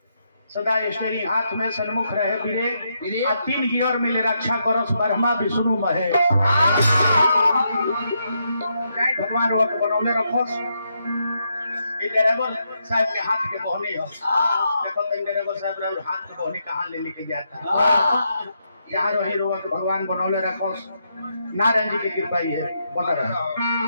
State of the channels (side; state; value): both; inverted; correlation -0.80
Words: सदा स्टेरिंग हाथ में सन्मुख रहे वीरे आ 3 गियर मिले रक्षा करस ब्रह्मा विष्णु महेश। जय भगवान वो बनौले रखोस। ये ड्राइवर साहब के हाथ के बहनी हो देखो तो ड्राइवर साहब हाथ के बहनी कहाँ ले लेके जाता यहाँ रही रोवा के भगवान बनौले रखोस। नारायण जी की कृपा ही है बना रहे